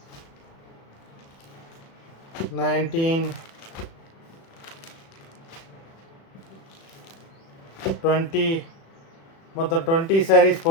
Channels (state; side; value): late; right; 36 ms